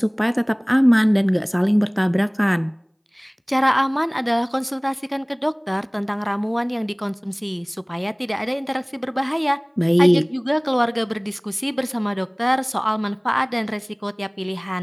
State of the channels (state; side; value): identical; both; correlation 1.00